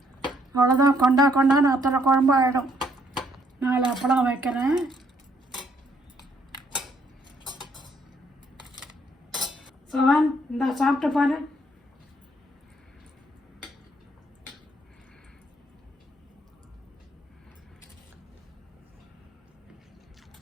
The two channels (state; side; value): normal; both; correlation 0.69